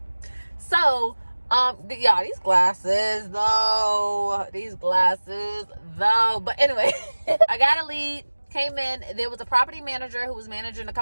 So yeah, these glasses though. But anyway, I got a lead. Came in, there was a property manager who was managing a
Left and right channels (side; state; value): both; inverted; correlation -1.00